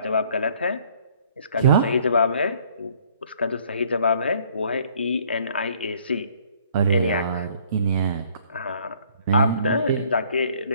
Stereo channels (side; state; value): both; inverted; correlation -0.60